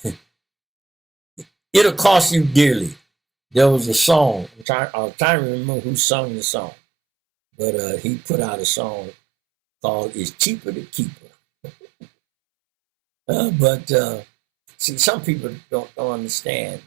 it'll cost you dearly. There was a song. I'm trying to remember who sung the song, but he put out a song called "It's Cheaper to Keep Her." See, some people don't understand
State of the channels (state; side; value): drops out; left; at 4.7 s